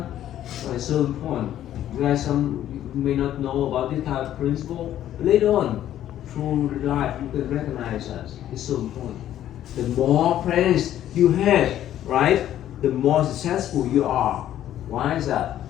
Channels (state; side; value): quieter; right; 11.9 dB